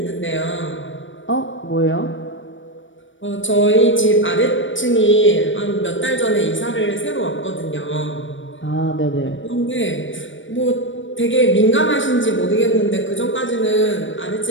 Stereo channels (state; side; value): late; right; 0.56 ms